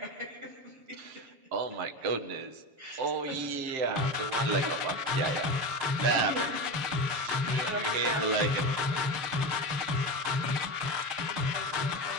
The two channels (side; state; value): left; late; 7.2 ms